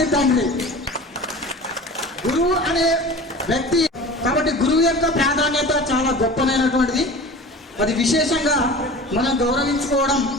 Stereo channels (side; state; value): both; normal; correlation 0.38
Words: తండ్రి. గురువు అనే వ్యక్తి కాబట్టి గురువు యొక్క ప్రాధాన్యత చాలా గొప్పనైనటువంటిది. అది విశేషంగా మనం గౌరవించుకోవడం